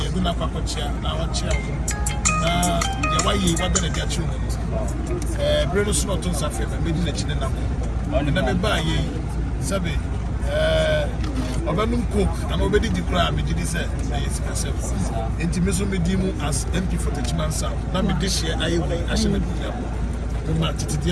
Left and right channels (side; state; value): both; identical; correlation 1.00